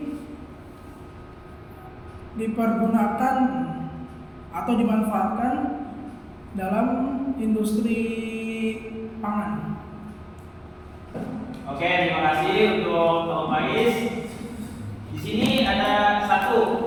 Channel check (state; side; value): identical; both; correlation 1.00